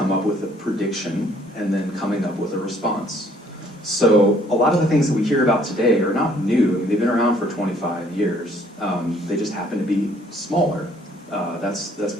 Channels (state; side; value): normal; both; correlation 0.62